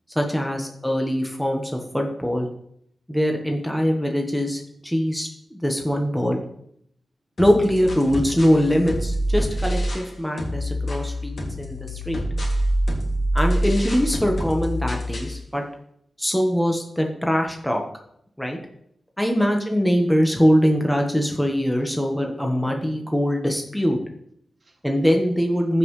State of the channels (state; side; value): normal; both; correlation 0.97